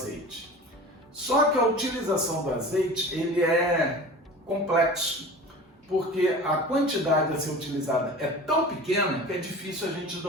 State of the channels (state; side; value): normal; both; correlation 0.37